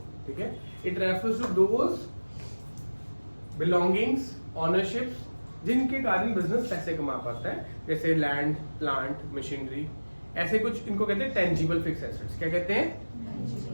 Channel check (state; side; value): inverted; both; correlation -1.00